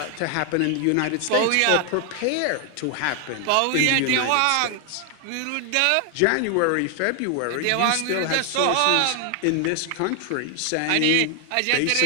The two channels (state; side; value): different; both; correlation 0.00